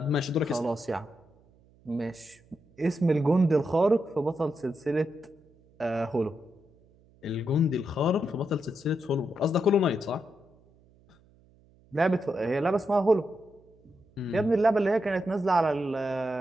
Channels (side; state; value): right; noise; hum, 30 dB below the sound